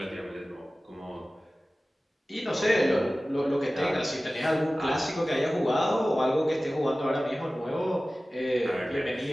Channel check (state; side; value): normal; both; correlation 0.97